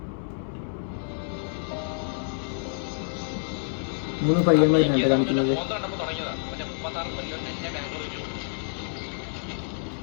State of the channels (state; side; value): silent; right; 60 dB below the other